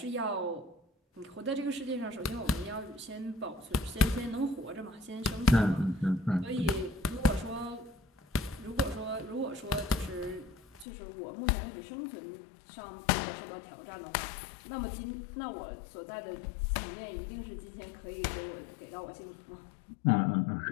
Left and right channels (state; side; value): drops out; right; at 10.9 s